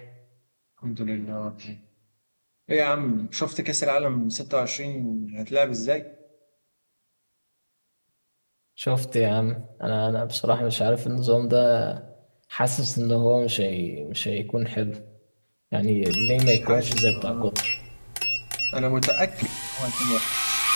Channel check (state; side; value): inverted; both; correlation -1.00